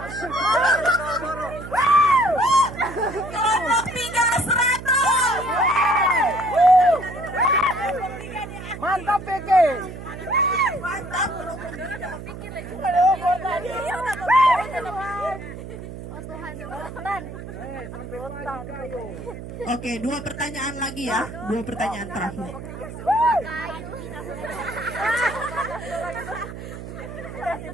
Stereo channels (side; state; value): right; noise; hum, 11 dB below the sound